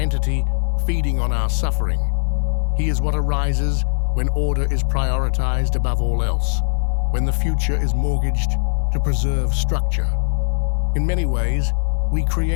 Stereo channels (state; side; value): silent; right; 57 dB below the other